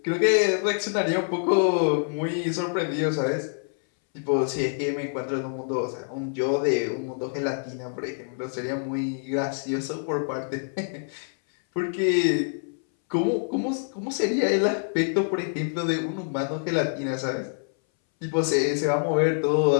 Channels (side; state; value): right; silent; 60 dB below the other